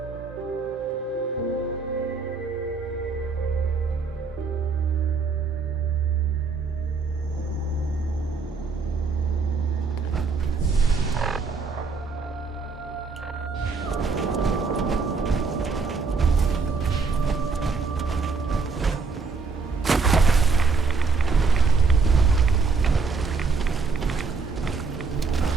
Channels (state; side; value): quieter; left; 4.6 dB